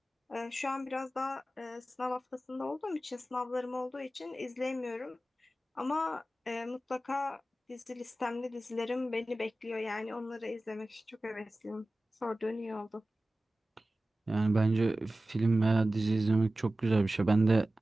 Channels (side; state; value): both; normal; correlation 0.96